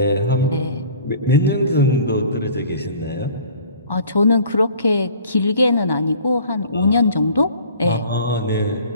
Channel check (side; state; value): both; inverted; correlation -0.48